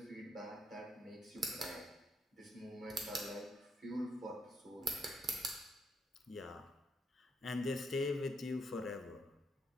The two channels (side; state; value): both; normal; correlation 0.73